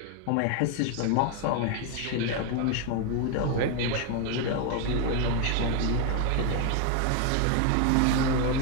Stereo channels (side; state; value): both; different; correlation 0.01